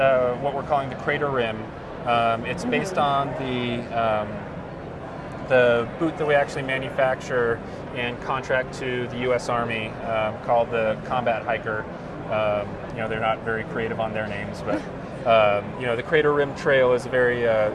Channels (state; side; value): identical; both; correlation 1.00